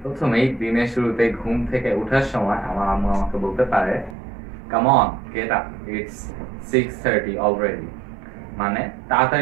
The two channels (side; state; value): left; drops out; at 4.2 s